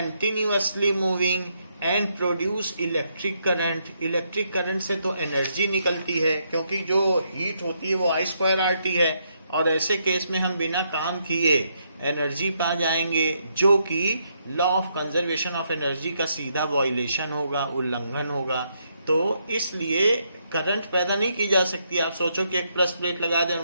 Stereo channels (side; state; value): both; inverted; correlation -0.76